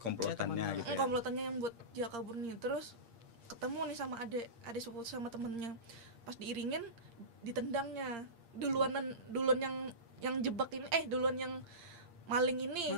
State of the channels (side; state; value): left; late; 8.6 ms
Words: komplotannya gitu ya. Komplotannya yang buat dia kabur nih. Terus ketemu nih sama adik sepupu sama temennya, pas diiringin ditendangnya duluan yang jebak ini, duluan yang maling ini